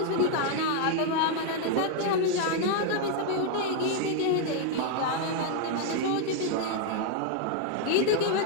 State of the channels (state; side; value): different; both; correlation 0.00